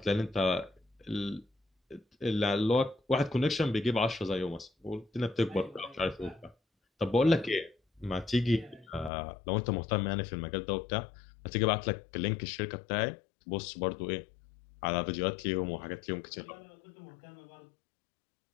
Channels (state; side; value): drops out; right; at 9.1 s